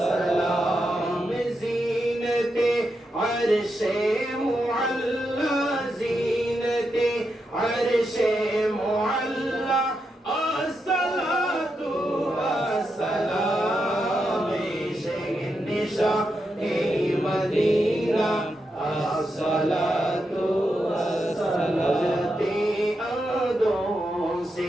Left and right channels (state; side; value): normal; both; correlation 0.85